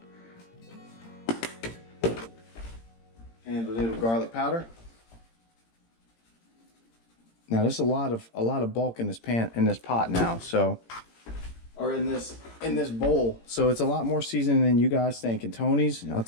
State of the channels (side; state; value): right; late; 18 ms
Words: And a little garlic powder. Now there's a lot of bulk in this pot now, so or in this bowl. So it's a lot more seasoning than you guys think. And Tony's, I'll